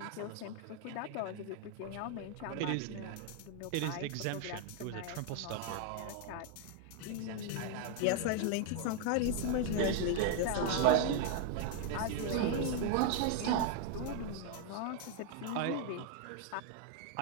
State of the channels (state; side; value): different; both; correlation 0.00